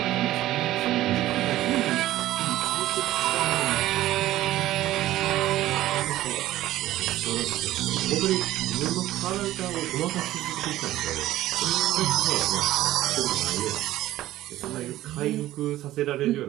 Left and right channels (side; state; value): left; quieter; 14.9 dB